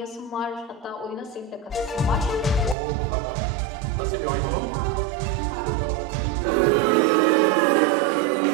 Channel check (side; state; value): left; drops out; at 2.8 s